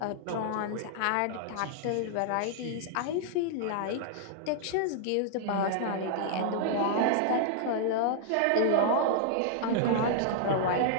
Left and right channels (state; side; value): different; both; correlation -0.01